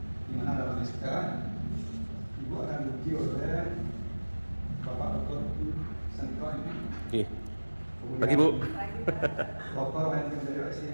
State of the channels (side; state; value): both; inverted; correlation -1.00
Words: di mana dalam sekarang Ibu akan diuji oleh Bapak Dr. Sentro ini. Oke. Pagi Bu. Dr. Wahid dari